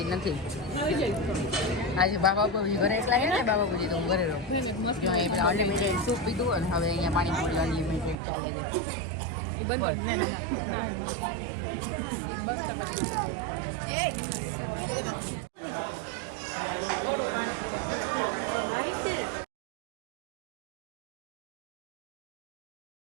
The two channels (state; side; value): drops out; left; at 8.2 s